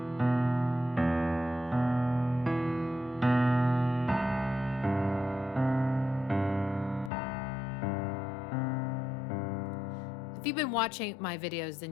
If you've been watching my videos,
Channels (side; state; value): right; drops out; at 7.1 s